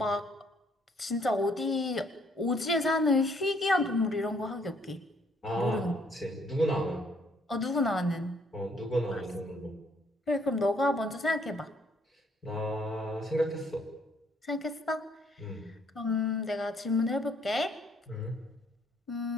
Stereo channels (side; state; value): both; normal; correlation 0.66